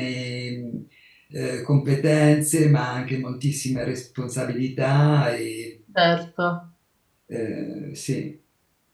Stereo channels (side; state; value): both; identical; correlation 1.00